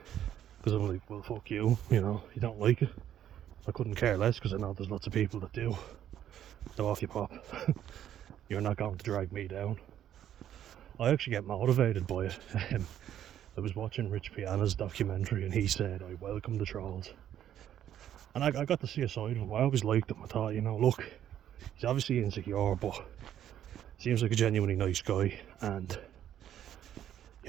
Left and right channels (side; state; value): left; quieter; 10.8 dB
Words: Because I'm like, well, fuck you, you know, you don't like it. I couldn't care less, because I know there's lots of people that do. So off you pop. You're not going to drag me down. I actually get motivated by it. I was watching Rich Piana's documentary and he said, I welcome the trolls. And I got to see a side of him. I always liked him. I thought, you know, look, he's obviously insecure, but seems like a genuinely nice guy. And